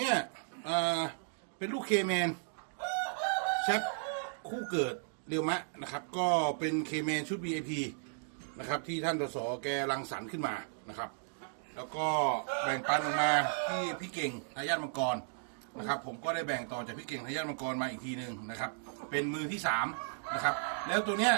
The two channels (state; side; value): silent; left; digital silence